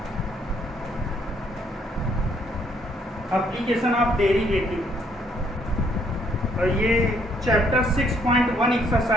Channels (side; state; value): both; normal; correlation 0.68